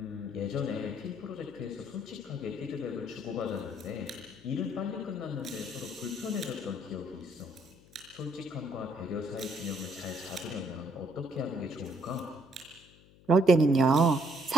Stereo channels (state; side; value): noise; left; hum, 25 dB below the sound